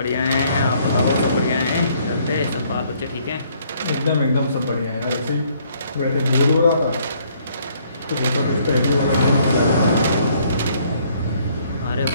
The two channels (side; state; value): both; inverted; correlation -0.65